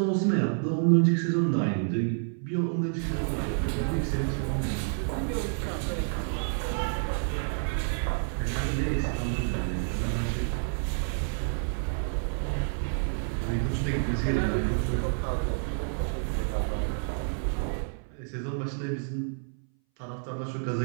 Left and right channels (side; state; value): left; silent; 59 dB below the other